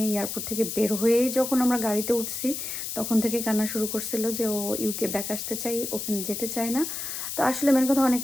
এয়ারপোর্ট থেকে বের হয়েই যখন আমরা গাড়িতে উঠছি তখন থেকে কান্না শুরু করছিল যে ও ইউকে ব্যাক আসতে চাই, ওখানে যেতে চায় না। তো আসলে মেন কথা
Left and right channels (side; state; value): left; noise; hiss, 5 dB below the sound